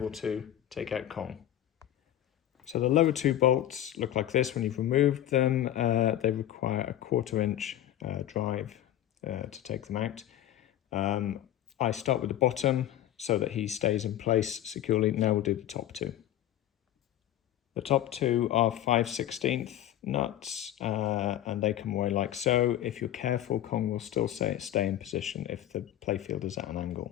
to take out Kong. So the lower two bolts look like this when you've removed them. They require a 1/4 inch drive to take them out. I start with the bottom so that he stays in place securely. Now we'll do the top two. The top two are 5/16 nuts and they come away like so. If you're careful, Kong will still stay in position if the playfield is at an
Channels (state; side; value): quieter; right; 12.3 dB